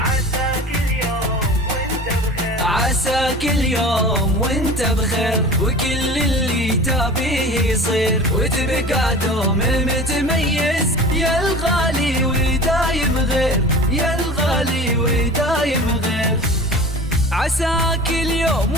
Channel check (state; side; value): normal; both; correlation 0.38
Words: عساك اليوم وانت بخير، وكل اللي تبيه يصير، وتبقى دوم متميز يا الغالي ودايم غير، يا الغالي ودايم غير. عساك اليوم